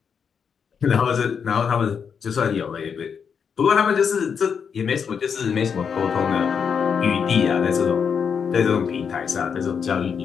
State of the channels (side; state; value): right; quieter; 6.7 dB